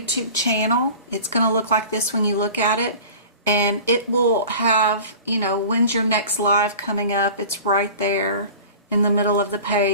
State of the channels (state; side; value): inverted; both; correlation -0.39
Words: channel, it's going to look like this when you look at it. And it will have, you know, when's your next live coming up. It's right there in the middle of the